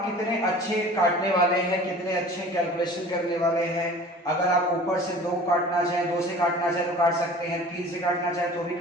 कितने अच्छे काटने वाले हैं, कितने अच्छे कैलकुलेशन करने वाले हैं। अगर आप ऊपर से 2 काटना चाहें, 2 से काटना चाहें तो काट सकते हैं, 3 से काटना चाहें तो भी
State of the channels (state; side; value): normal; both; correlation 0.43